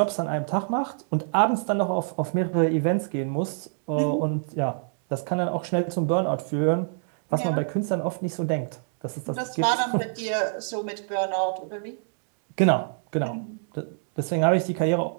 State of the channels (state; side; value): silent; left; digital silence